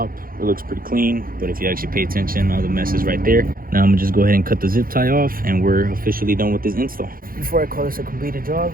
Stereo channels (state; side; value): late; left; 0.42 ms